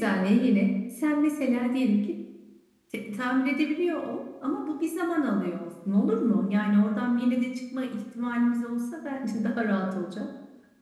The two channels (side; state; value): both; identical; correlation 1.00